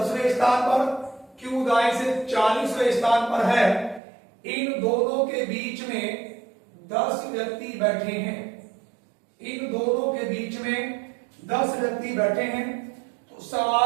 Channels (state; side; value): drops out; left; at 4.0 s